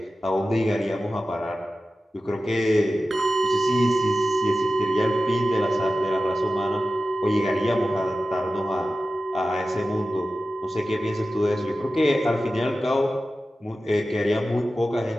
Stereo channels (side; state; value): both; normal; correlation 0.93